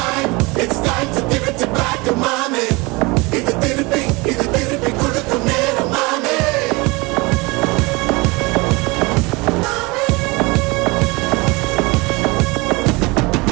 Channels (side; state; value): left; quieter; 25.2 dB